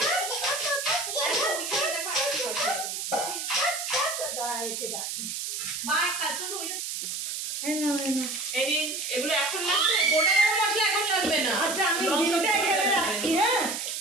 এগুলো এখন লাগবে, গোটা গরম মশলা এখন লাগবে না। আচ্ছা আমি ডিমটা এখানে রাখছি হ্যাঁ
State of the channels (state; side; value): noise; right; hiss, 4 dB below the sound